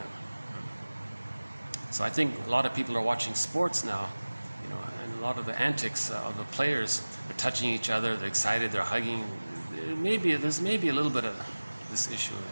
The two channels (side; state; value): both; inverted; correlation -1.00